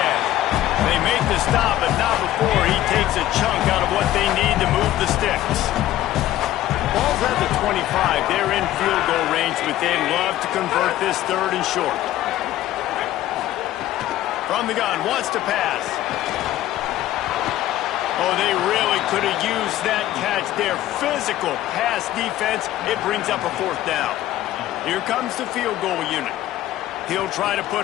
They make the stop, but not before he takes a chunk out of what they need to move the sticks. Ball's at the 25. They're in field goal range, but they'd love to convert this 3rd and short. From the gun, wants to pass. Oh, they really could have used that catch there. Physical pass defense. It brings up a 4th down. Here comes the field goal unit. He'll try to put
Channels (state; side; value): quieter; right; 14.1 dB